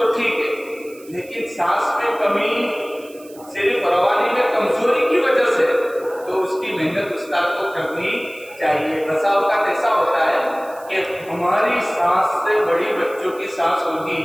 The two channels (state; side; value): noise; right; hiss, 23 dB below the sound